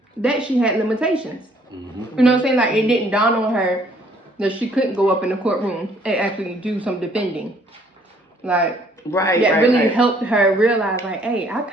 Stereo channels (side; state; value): both; normal; correlation 0.62